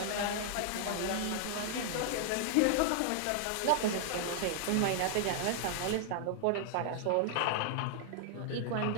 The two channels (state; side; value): different; both; correlation -0.01